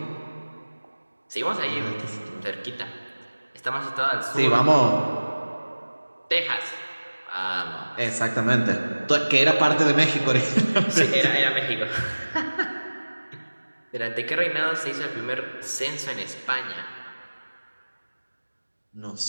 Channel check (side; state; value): both; inverted; correlation -1.00